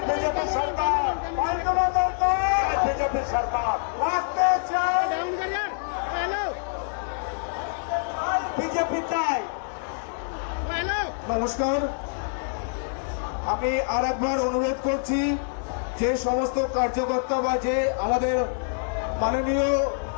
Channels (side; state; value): right; silent; 61 dB below the other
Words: बीजेपी सरकार पाल्टना दरकार बीजेपी सरकार रास्ते चाय बीजेपी चाय। নমস্কার, আমি আর একবার অনুরোধ করছি যে সমস্ত কার্যকর্তা বা যে আমাদের মাননীয়